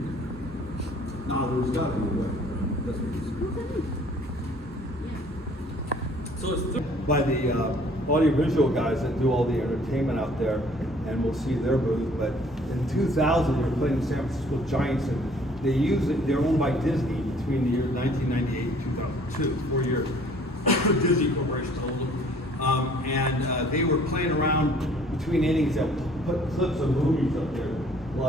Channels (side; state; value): both; normal; correlation 0.56